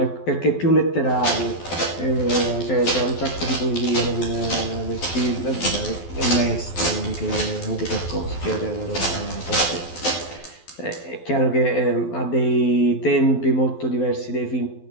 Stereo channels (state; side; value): late; right; 12 ms